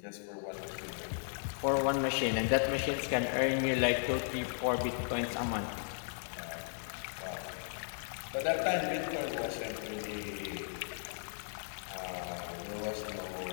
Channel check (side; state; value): right; silent; digital silence